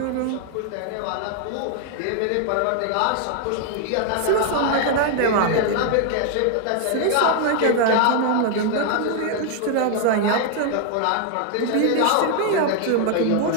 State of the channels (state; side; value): different; both; correlation 0.00